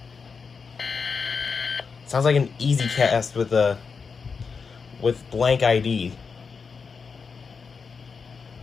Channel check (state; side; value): quieter; right; 5.3 dB